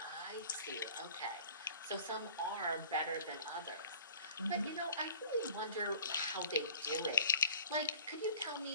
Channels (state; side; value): inverted; both; correlation -0.46